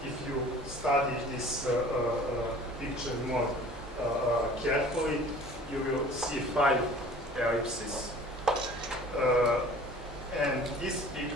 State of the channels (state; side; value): normal; both; correlation 0.47